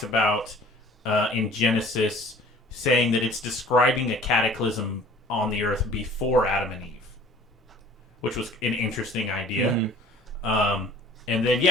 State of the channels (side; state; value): both; normal; correlation 0.50